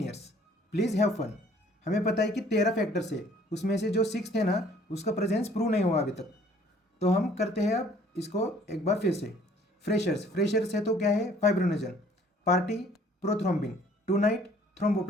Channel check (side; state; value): both; normal; correlation 0.57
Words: please have fun. हमें पता है कि 13 फैक्टर्स है, उसमें से जो 6 थे ना, उसका प्रेजेंस प्रूव नहीं हुआ अभी तक। तो हम करते हैं अब इसको एक बार फिर से। फ्रेशर्स है तो क्या है? Fibrinogen, party prothrombin, tonight